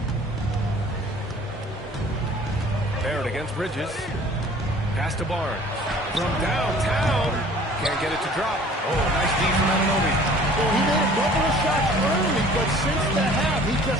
Barrett against Bridges. Pass to Barnes. From downtown. Can't get it to drop. Oh, nice D from Anunoby. Well, he made a couple of shots early, but since the half, he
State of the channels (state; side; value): normal; both; correlation 0.50